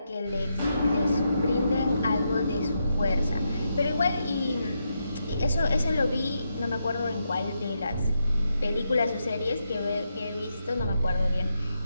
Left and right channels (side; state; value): both; inverted; correlation -0.83